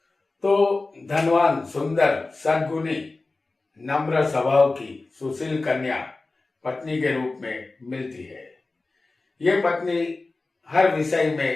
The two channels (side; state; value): right; quieter; 3.4 dB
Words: तो धनवान, सुंदर, सद्गुणी, नम्र स्वभाव की सुशील कन्या पत्नी के रूप में मिलती है। ये पत्नी हर विषय